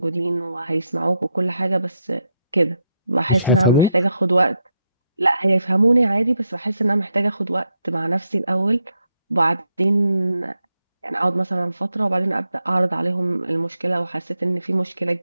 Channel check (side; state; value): both; inverted; correlation -0.82